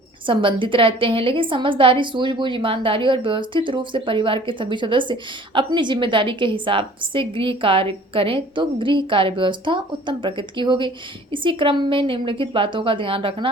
संबंधित रहते हैं। लेकिन समझदारी, सूझबूझ, ईमानदारी और व्यवस्थित रूप से परिवार के सभी सदस्य अपनी जिम्मेदारी के हिसाब से गृह कार्य करें तो गृह कार्य व्यवस्था उत्तम प्रकृति की होगी। इसी क्रम में निम्नलिखित बातों का ध्यान रखना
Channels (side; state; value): both; normal; correlation 0.51